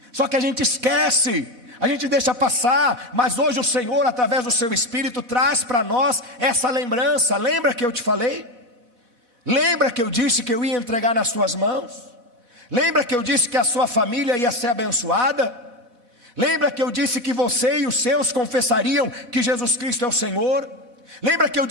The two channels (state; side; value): late; left; 4.1 ms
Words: só que a gente esquece, a gente deixa passar. Mas hoje o Senhor, através do seu Espírito, traz para nós essa lembrança. Lembra que eu te falei? Lembra que eu disse que eu ia entregar nas suas mãos? Lembra que eu disse que a sua família ia ser abençoada? Lembra que eu disse que você e os seus confessariam que Jesus Cristo é o Senhor? Lembra que eu